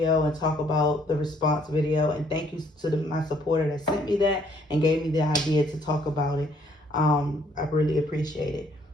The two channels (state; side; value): normal; both; correlation 0.65